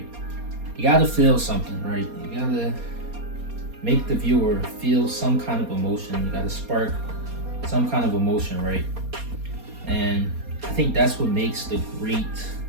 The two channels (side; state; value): left; late; 4.2 ms